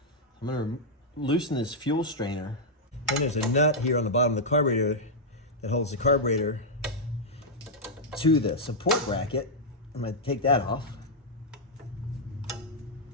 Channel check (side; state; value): both; normal; correlation -0.05